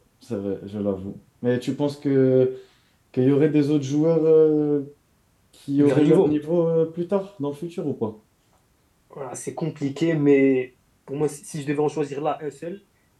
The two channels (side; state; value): both; identical; correlation 1.00